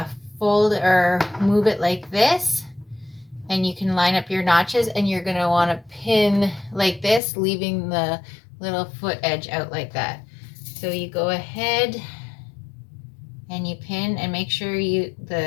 fold or move it like this, and you can line up your notches, and you're going to want to pin like this, leaving the little foot edge out like that. So you go ahead and you pin, and make sure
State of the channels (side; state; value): right; drops out; at 7.2 s